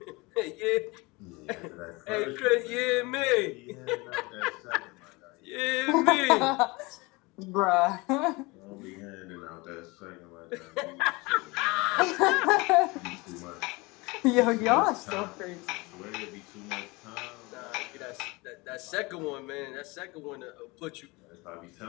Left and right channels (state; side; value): quieter; right; 24.8 dB